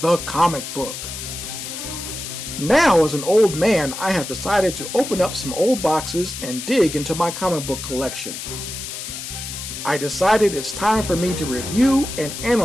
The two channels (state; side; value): noise; left; hiss, 8 dB below the sound